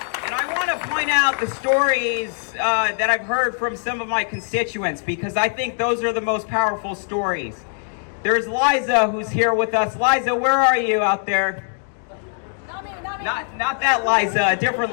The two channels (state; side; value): silent; right; 65 dB below the other